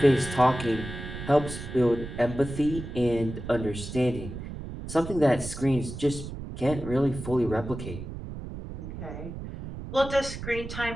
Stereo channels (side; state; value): right; noise; rumble, 9 dB below the sound